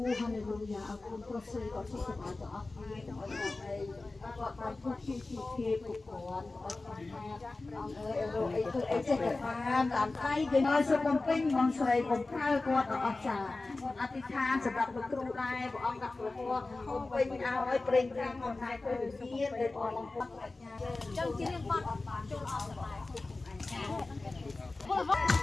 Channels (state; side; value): quieter; right; 3.3 dB